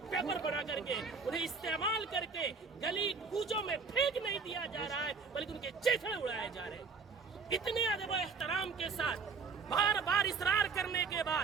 پیپر بنا کر کے انہیں استعمال کر کے گلی کوچوں میں پھینک نہیں دیا جا رہا ہے بلکہ ان کے چیتھڑے اڑائے جا رہے ہیں۔ اتنے ادب و احترام کے ساتھ بار بار اصرار کرنے کے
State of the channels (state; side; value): quieter; left; 5.0 dB